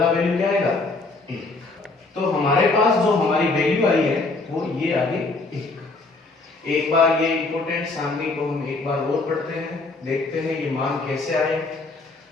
वैल्यू क्या आएगा, 1। तो हमारे पास जो हमारी वैल्यू आई है वो ये आ गई 1। एक बार ये इंपॉर्टेंट सारणी को हम एक बार और पढ़ते हैं, देखते हैं ये मान कैसे आए।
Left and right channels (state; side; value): quieter; right; 3.4 dB